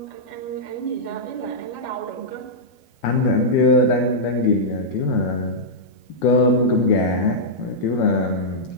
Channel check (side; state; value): right; late; 12 ms